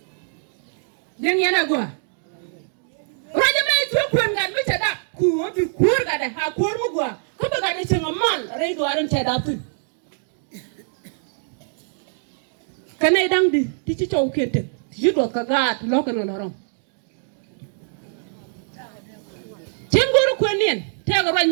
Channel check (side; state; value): left; silent; digital silence